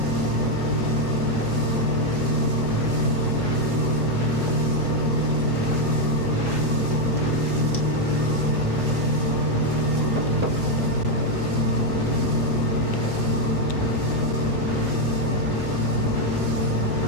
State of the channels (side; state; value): right; noise; hum, 14 dB below the sound